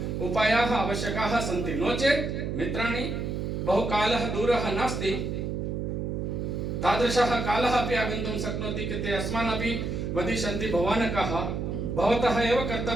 उपायाः आवश्यकाः सन्ति। नो चेत् मित्राणि, बहुकालः दूरः नास्ति, तादृशः कालः अपि आगन्तुं शक्नोति कि ते अस्मान् अपि वदिष्यन्ति, भवान् कः? भवतः एव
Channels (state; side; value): noise; right; hum, 3 dB below the sound